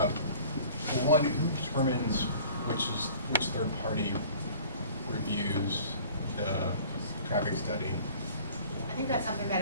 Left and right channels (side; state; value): both; inverted; correlation -0.48